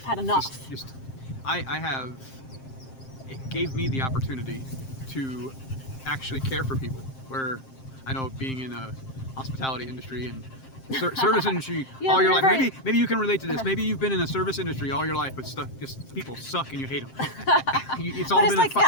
had enough. I have. It gave me the opportunity to actually care for people. Where I know being in a hospitality industry and service industry Yeah, all your you're life. right. Maybe you can relate to this. Maybe you've been in a service industry all your life, but just people suck and you hate them. It's all But been it's like, a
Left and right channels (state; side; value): late; right; 7.6 ms